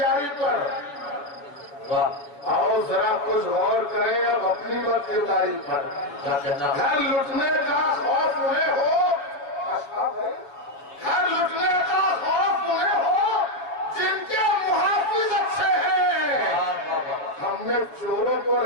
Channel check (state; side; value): late; right; 7.0 ms